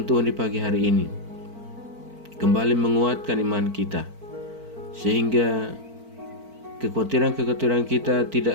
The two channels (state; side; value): late; left; 4.5 ms